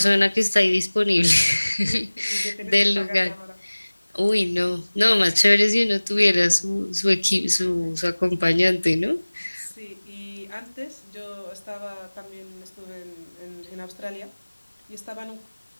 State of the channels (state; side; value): inverted; both; correlation -1.00